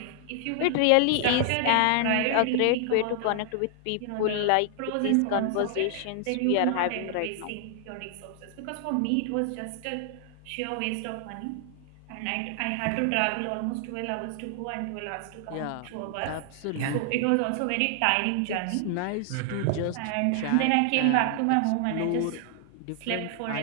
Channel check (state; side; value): different; both; correlation 0.00